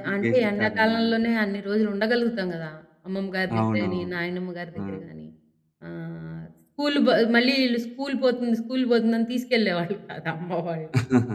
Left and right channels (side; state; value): both; identical; correlation 1.00